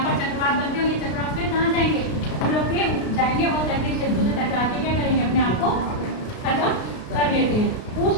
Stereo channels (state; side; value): late; right; 33 ms